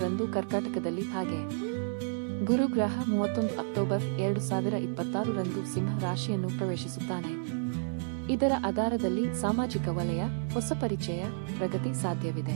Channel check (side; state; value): left; silent; 57 dB below the other